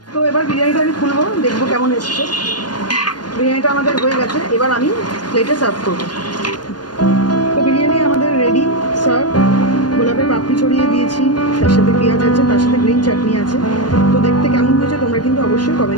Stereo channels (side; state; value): right; late; 0.70 ms